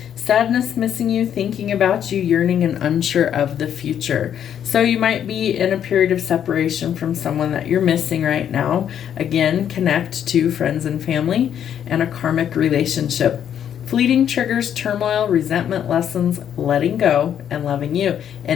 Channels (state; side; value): quieter; right; 9.4 dB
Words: sadness, missing you, thinking about you, yearning, and unsure of the future. So you might be in a period of separation from someone that you're missing right now. Again, connect to friends and family and a karmic relationship. Fleeting triggers, turmoil, resentment, lessons, letting go, and loving you.